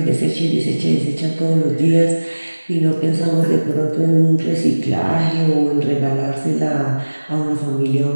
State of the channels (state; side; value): inverted; both; correlation -1.00